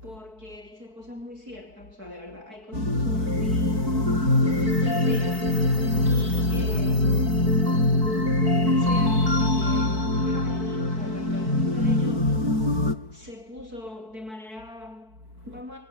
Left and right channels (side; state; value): left; late; 4.6 ms